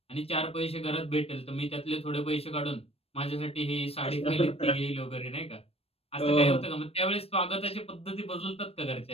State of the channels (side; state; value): right; late; 0.28 ms